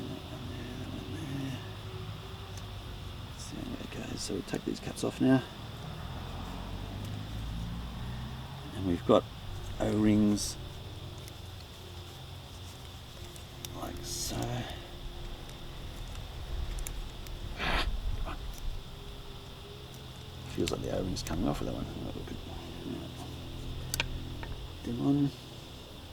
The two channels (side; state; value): both; identical; correlation 1.00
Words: one there. See how it goes. So we'll take these caps off now. And we've got O-rings like so. Feels like the O-ring's coming off with that one. Them on.